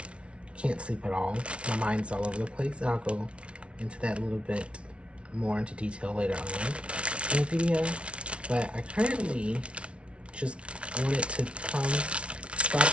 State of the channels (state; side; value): late; left; 0.060 ms